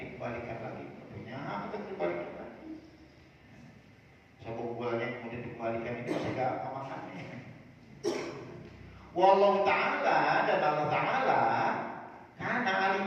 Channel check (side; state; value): both; identical; correlation 1.00